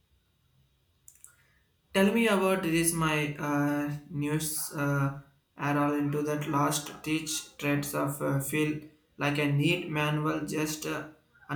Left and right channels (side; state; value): both; identical; correlation 1.00